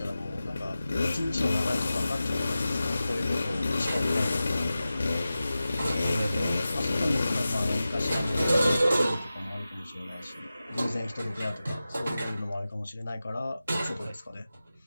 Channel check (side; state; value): both; inverted; correlation -0.94